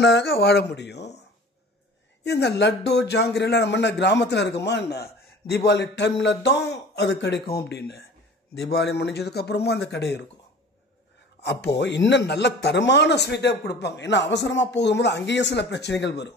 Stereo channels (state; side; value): normal; both; correlation 0.43